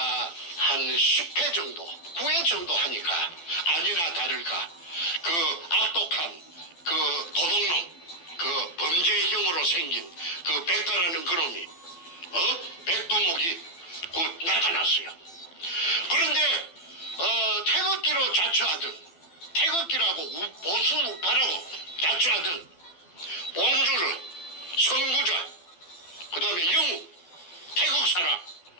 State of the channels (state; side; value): late; right; 12 ms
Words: 한 10회 정도, 9회 정도 하니까 아니나 다를까 그 악독한 그 도둑놈, 그 범죄형으로 생긴 그 백가라는 그놈이 백두목이 나타났어요. 그런데 태극기로 자처하던 태극기라고 보수 우파라고 자처하던 봉주르, 선구자, 그 다음에 영우, 태극 사람